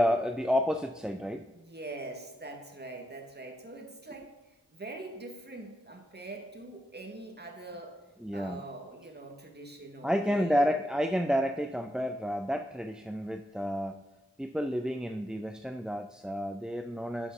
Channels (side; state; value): both; normal; correlation 0.84